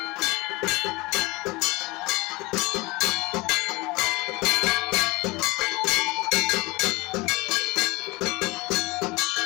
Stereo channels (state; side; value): quieter; right; 23.6 dB